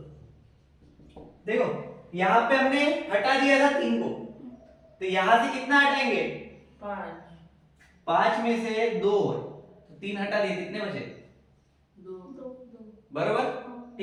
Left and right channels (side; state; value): both; identical; correlation 1.00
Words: देखो यहाँ पे हमने हटा दिया था 3 को, तो यहां से कितना हटाएंगे? 5 में से 2, तो 3 हटा दिए, कितने बचे? 2। बरोबर,